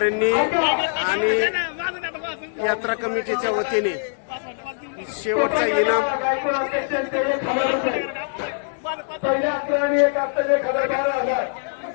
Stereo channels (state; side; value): silent; right; digital silence